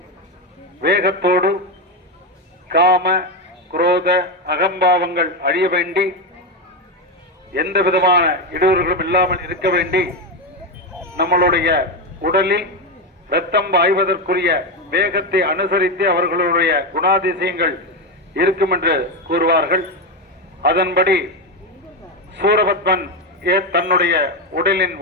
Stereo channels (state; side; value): normal; both; correlation 0.11